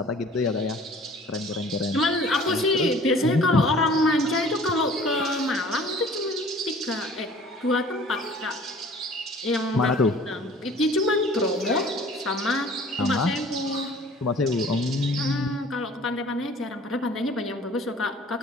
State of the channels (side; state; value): both; normal; correlation 0.49